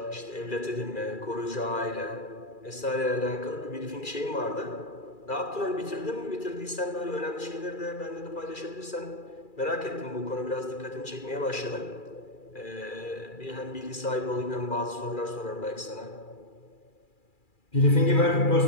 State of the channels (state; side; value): late; right; 2.4 ms